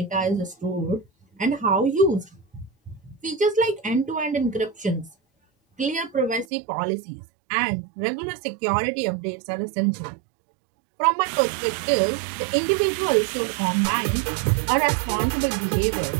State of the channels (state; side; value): drops out; left; at 6.5 s